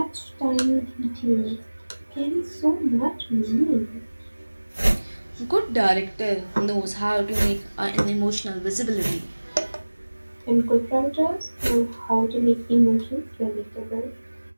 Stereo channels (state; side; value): inverted; both; correlation -1.00